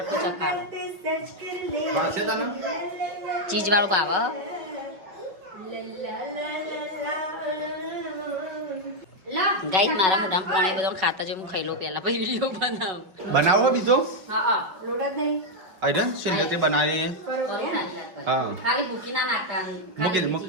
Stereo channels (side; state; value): left; late; 5.5 ms